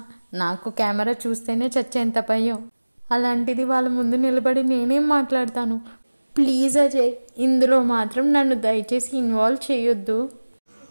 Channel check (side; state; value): both; inverted; correlation -1.00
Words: నాకు కెమెరా చూస్తేనే చచ్చేంత భయం. అలాంటిది వాళ్ళ ముందు నిలబడి నేనేం మాట్లాడతాను? ప్లీజ్ అజయ్, ఇందులో మాత్రం నన్ను దయచేసి ఇన్వాల్వ్ చేయొద్దు.